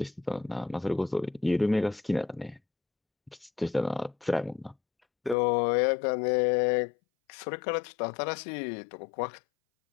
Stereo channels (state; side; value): drops out; right; at 5.4 s